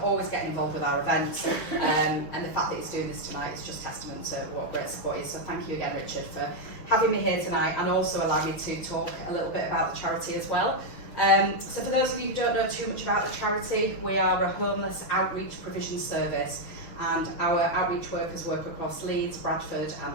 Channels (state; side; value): late; right; 6.4 ms